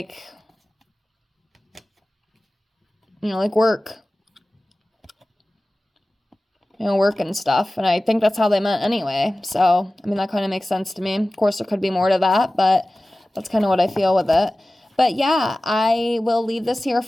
like work. Work and stuff. And I think that's how they meant anyway. So, that kind of makes sense to me. Of course, there could be more to that, but that's kind of what I feel with it. But yeah, I will leave this here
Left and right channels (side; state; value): both; normal; correlation 0.97